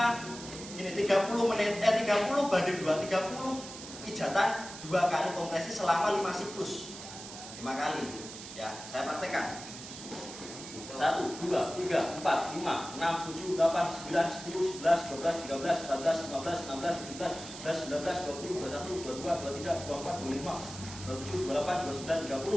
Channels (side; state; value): right; noise; hiss, 12 dB below the sound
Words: ini 30 menit, 30 banding 2, 30 pijatan 2 kali kompresi selama 5 siklus. 5 kali. Ya, saya praktekkan. 1, 2, 3, 4, 5, 6, 7, 8, 9, 10, 11, 12, 13, 14, 15, 16, 17, 18, 19, 20, 21, 22, 23, 24, 25, 27, 28, 29,